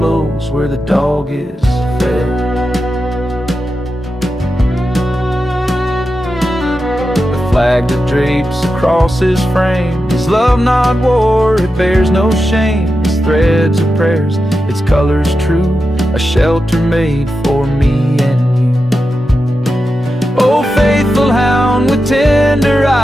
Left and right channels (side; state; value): both; normal; correlation 0.90